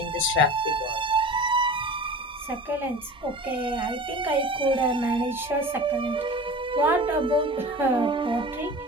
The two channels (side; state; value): both; normal; correlation 0.37